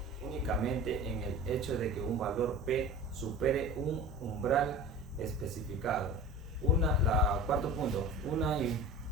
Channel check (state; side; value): normal; both; correlation 0.36